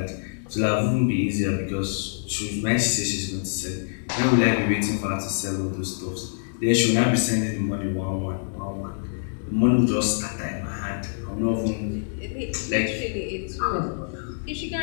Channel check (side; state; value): right; silent; digital silence